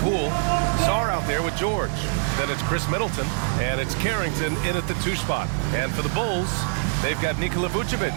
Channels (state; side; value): silent; left; 62 dB below the other